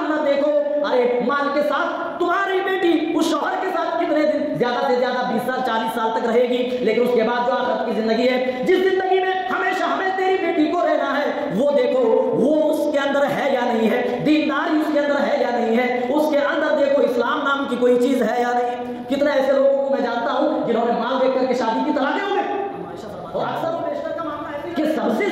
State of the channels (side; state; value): both; identical; correlation 1.00